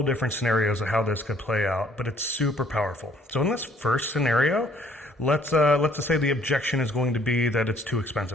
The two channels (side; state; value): both; normal; correlation 0.61